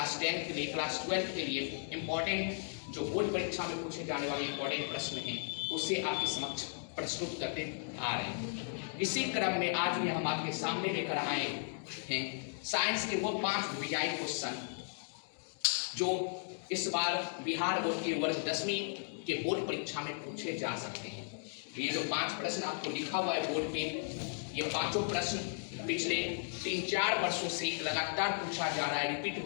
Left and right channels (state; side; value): silent; right; digital silence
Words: 10 के लिए, क्लास 12 के लिए इम्पोर्टेंट जो बोर्ड परीक्षा में पूछे जाने वाले इम्पोर्टेंट प्रश्न हैं उससे आपके समक्ष प्रस्तुत करते आ रहे हैं। इसी क्रम में आज भी हम आपके सामने लेकर आए हैं साइंस के वो 5 वीआई क्वेश्चन जो इस बार बिहार बोर्ड के वर्ग 10वीं के बोर्ड परीक्षा में पूछे जा सकते हैं। ये जो 5 प्रश्न आपको लिखा हुआ है बोर्ड पे, ये पांचों प्रश्न पिछले 3-4 वर्षों से लगातार पूछा जा रहा है, रिपीट